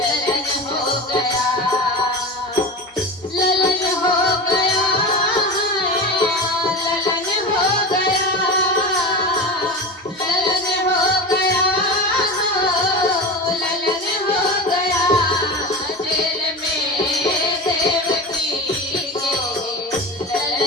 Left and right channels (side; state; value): both; normal; correlation 0.27